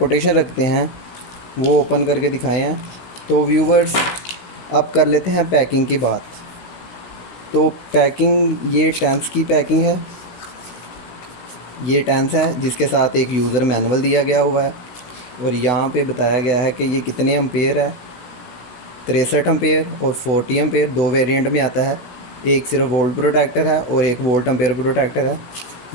रखते हैं वो ओपन करके दिखाए हैं। तो व्यूवर्स, अब कर लेते हैं पैकिंग की बात। तो पैकिंग, ये टेंस की पैकिंग है। ये टेंस है जिसके साथ एक यूज़र मैनुअल दिया गया हुआ है, और यहाँ पे बताया गया है कि ये कितने एम्पेयर है। 63 एम्पेयर और 40 एम्पेयर 2 वेरिएंट में आता है। एक सिर्फ वोल्ट प्रोटेक्टर है और एक वोल्ट एम्पेयर प्रोटेक्टर है।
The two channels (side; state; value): right; late; 16 ms